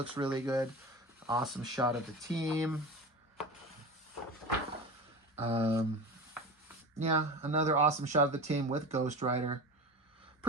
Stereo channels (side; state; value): both; normal; correlation 0.29